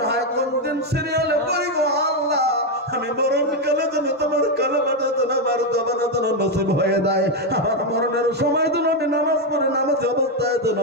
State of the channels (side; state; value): both; normal; correlation 0.05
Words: হয় কোন দিন সিরিয়ালে পড়ি গো আল্লাহ, আমি মরণকালে যেন তোমার কালেমাটা যেন আমার জবানে যেন নসিব হয়ে যায়। আমার মরণের সময় যেন আমি নামাজ পড়ে নামাজ অবস্থায় যেন